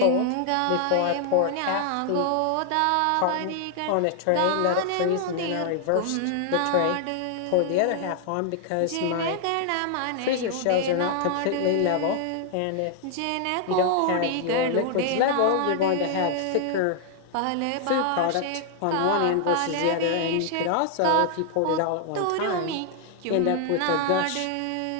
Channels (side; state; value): both; different; correlation 0.00